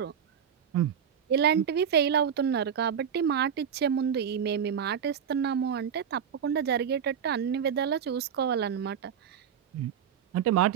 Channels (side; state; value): left; quieter; 8.1 dB